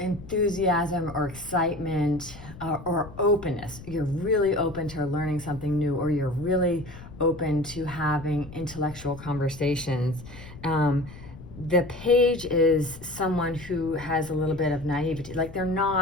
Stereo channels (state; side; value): noise; left; rumble, 16 dB below the sound